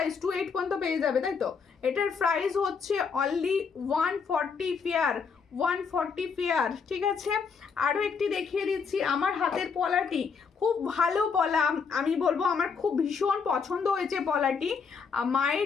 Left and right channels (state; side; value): quieter; right; 5.7 dB